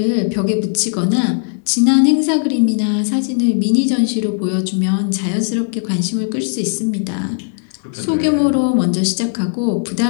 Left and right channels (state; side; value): silent; right; digital silence